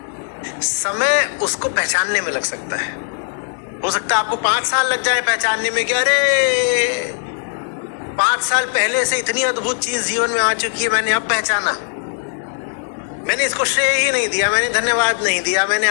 समय उसको पहचानने में लग सकता है। हो सकता है आपको 5 साल लग जाए पहचानने में कि अरे 5 साल पहले से इतनी अद्भुत चीज जीवन में आ चुकी है, मैंने अब पहचाना। मैंने इसको श्रेय ही नहीं दिया, मैंने धन्यवाद नहीं दिया, मैंने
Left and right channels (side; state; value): right; silent; digital silence